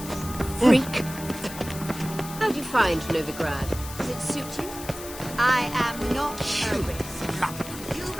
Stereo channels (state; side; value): noise; left; hiss, 12 dB below the sound